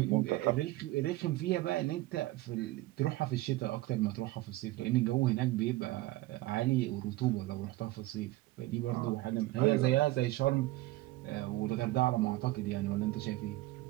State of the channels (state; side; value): quieter; left; 18.2 dB